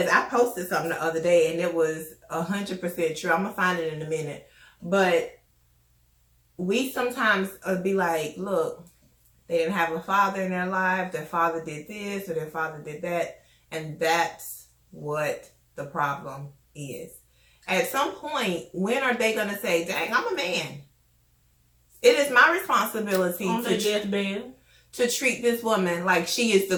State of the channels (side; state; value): both; identical; correlation 1.00